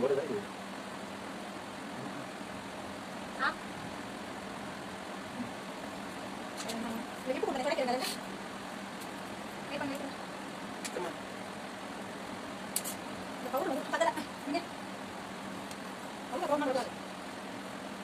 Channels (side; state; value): both; identical; correlation 1.00